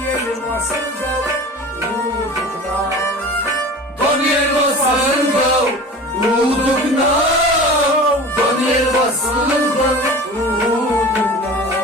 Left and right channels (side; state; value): both; normal; correlation 0.37